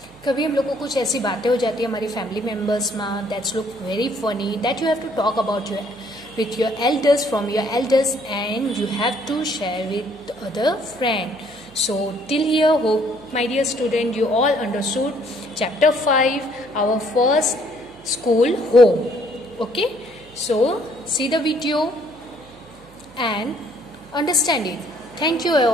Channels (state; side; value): noise; right; hum, 26 dB below the sound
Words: कभी हम लोग को कुछ ऐसी बातें हो जाती है हमारी फैमिली मेम्बर्स में that's look very funny that you have to talk about your with your elders from your elders and you have to share with other friend. So till here, hope my dear student you all understood chapter 5, our first school home. Okay, so see the video and understand it. Thank you